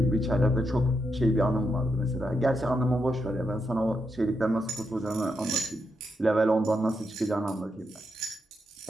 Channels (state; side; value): normal; both; correlation 0.83